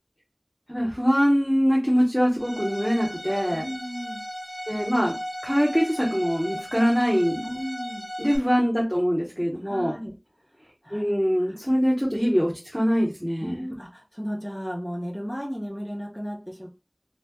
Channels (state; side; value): identical; both; correlation 1.00